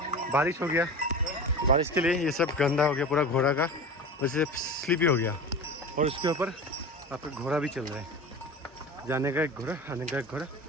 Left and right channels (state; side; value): normal; both; correlation 0.31